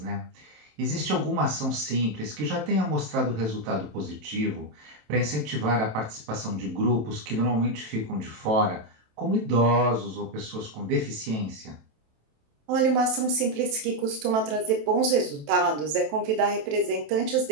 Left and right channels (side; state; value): left; late; 27 ms